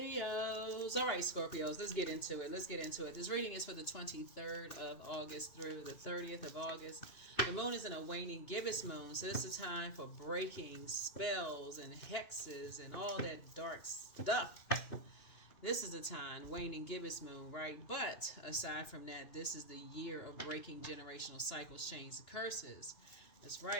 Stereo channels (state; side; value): late; right; 2.9 ms